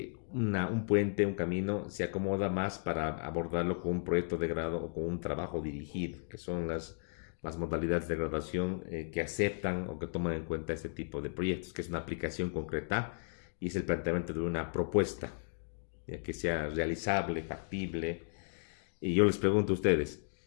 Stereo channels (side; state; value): right; silent; digital silence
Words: un puente, un camino, se acomoda más para abordarlo con un proyecto de grado o con un trabajo dirigido, que son las modalidades de graduación que aceptan o que toman en cuenta este tipo de proyectos, que es una aplicación concreta y es el planteamiento de una propuesta, ya que sea realizable, factible. Y yo les pregunto a ustedes,